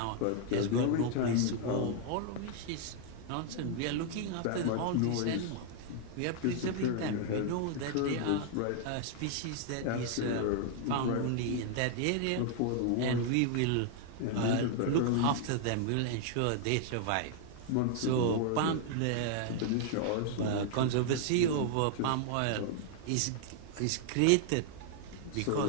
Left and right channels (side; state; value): both; different; correlation 0.00